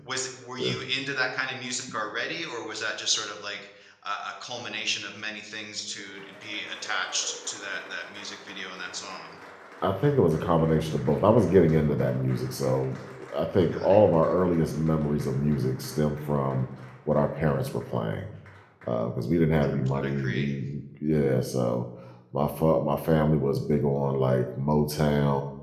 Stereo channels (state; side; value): identical; both; correlation 1.00